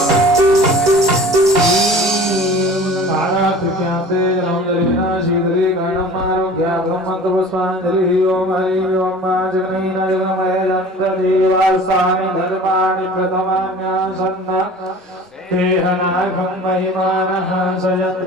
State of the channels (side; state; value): both; normal; correlation 0.42